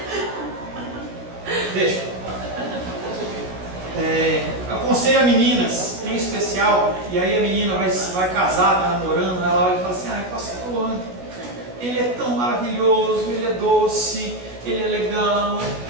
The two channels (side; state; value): left; late; 16 ms